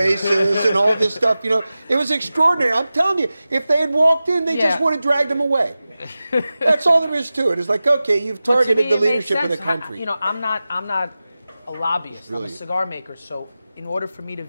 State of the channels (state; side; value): inverted; both; correlation -0.95